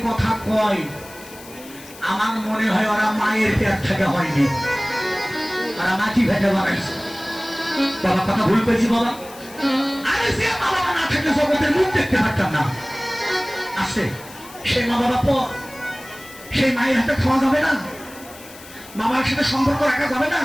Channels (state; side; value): noise; left; hiss, 19 dB below the sound